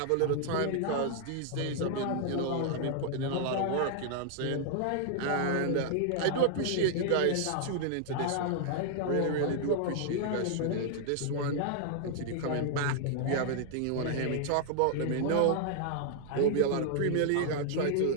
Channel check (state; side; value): different; both; correlation 0.00